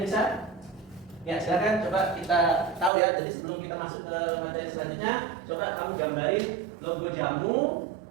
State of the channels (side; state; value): left; drops out; at 2.9 s